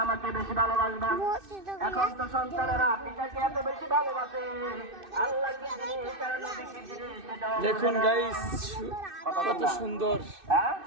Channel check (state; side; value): late; left; 2.6 ms